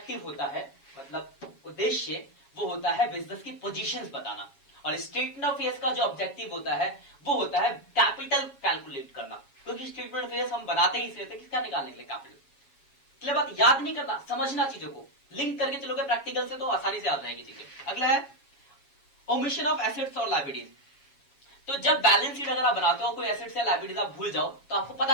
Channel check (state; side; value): late; right; 7.3 ms